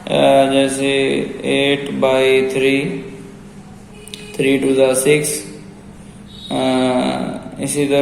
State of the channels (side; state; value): both; identical; correlation 1.00